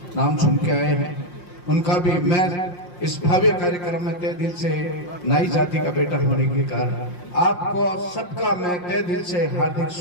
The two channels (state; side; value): late; right; 5.6 ms